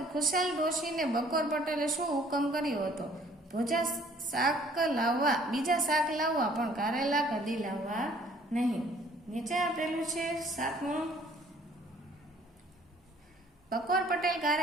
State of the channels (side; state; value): both; normal; correlation 0.57